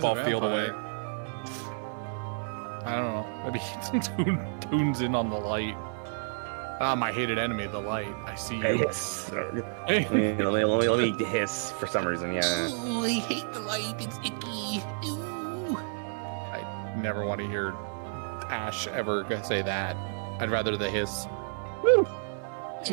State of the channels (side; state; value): left; silent; digital silence